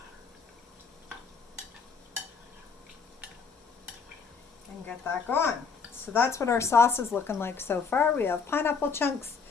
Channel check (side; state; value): right; quieter; 5.4 dB